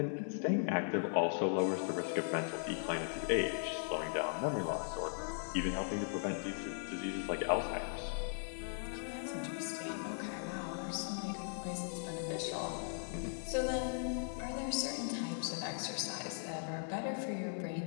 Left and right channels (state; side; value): silent; right; digital silence